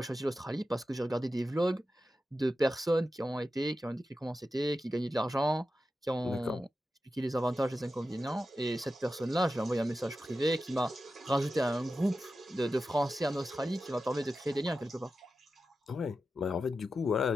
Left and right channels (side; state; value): both; normal; correlation 0.91